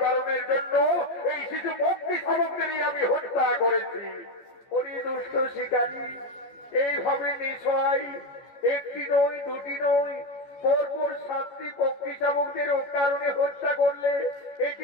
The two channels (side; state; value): right; late; 14 ms